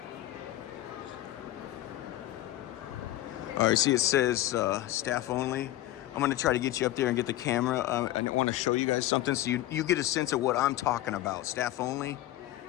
all right, see it says staff only. I'm gonna try to get you up there and get the camera. I want to show you guys something so you get a sense of what I'm talking about. Staff only.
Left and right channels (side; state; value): right; quieter; 14.8 dB